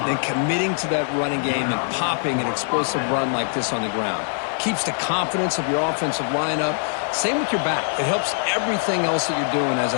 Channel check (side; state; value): right; silent; 64 dB below the other